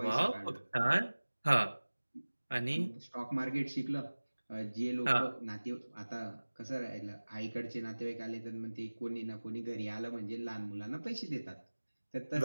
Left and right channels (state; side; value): inverted; both; correlation -1.00